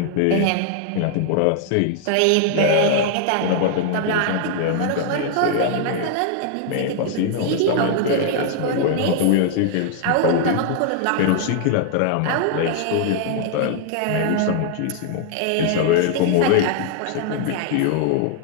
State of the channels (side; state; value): both; different; correlation 0.00